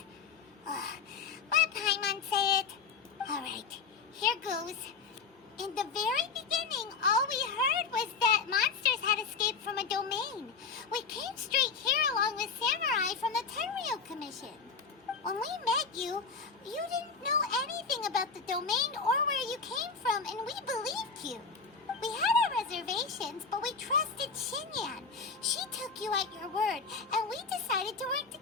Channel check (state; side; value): quieter; right; 5.1 dB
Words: Let Paimon say it. Alright, here goes. In the very beginning, all we heard was that monsters had escaped from a domain. We came straight here along with samurai from the Tenryou Commission. When we met you, you didn't know anything about the domain or where you came from, and we believed you. We had our reservations, but we trusted Shinyan. She took you at your word, and we decided to work